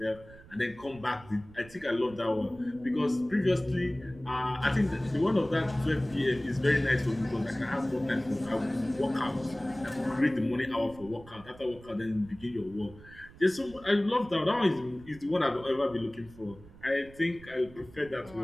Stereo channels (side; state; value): right; noise; rumble, 20 dB below the sound